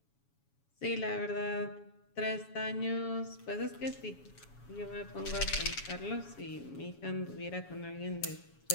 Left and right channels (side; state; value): right; late; 7.2 ms